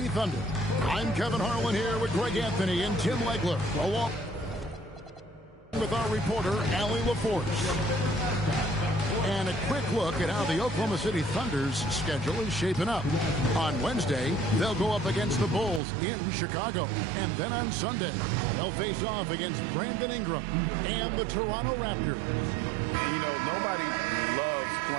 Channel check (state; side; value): drops out; left; at 15.8 s